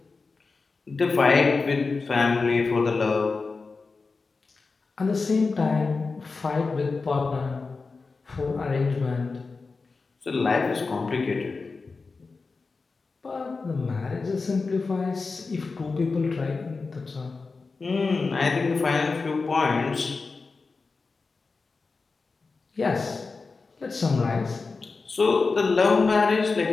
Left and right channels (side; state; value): right; quieter; 4.2 dB